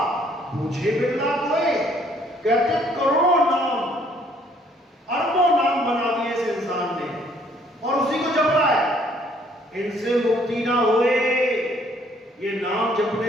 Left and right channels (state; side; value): normal; both; correlation 0.63